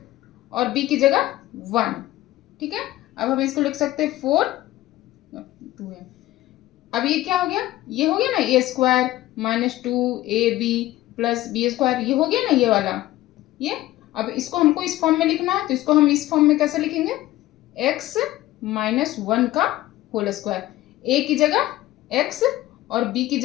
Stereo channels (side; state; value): right; quieter; 15.9 dB